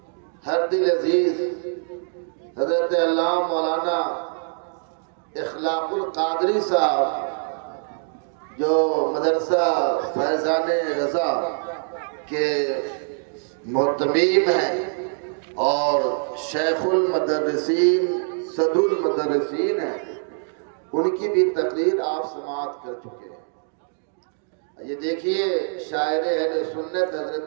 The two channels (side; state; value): left; silent; digital silence